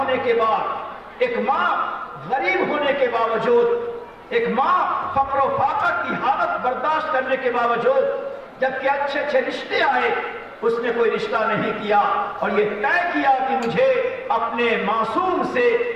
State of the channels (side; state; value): both; identical; correlation 1.00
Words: کے بعد، ایک ماں غریب ہونے کے باوجود، ایک ماں فقر و فاقہ کی حالت برداشت کرنے کے باوجود، جبکہ اچھے اچھے رشتے آئے، اس نے کوئی رشتہ نہیں کیا اور یہ طے کیا کہ مجھے اپنے معصوم سے،